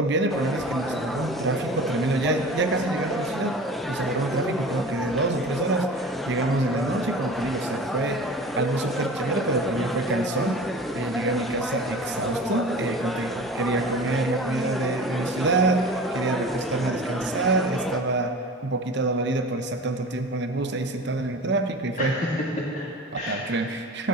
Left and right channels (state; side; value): normal; both; correlation 0.38